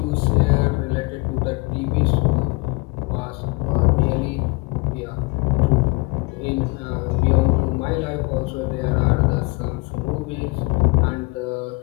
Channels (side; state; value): right; quieter; 27.1 dB